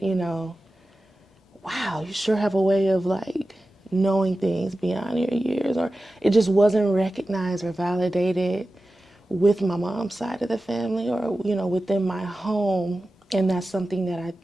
wow, you sure have a way of like knowing things beyond your years, or it just wasn't recognized or validated with my mom's side of the family, or within my home. And that's something that I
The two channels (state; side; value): normal; both; correlation 0.94